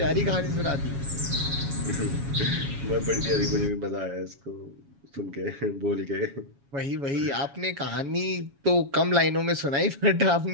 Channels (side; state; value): left; late; 7.2 ms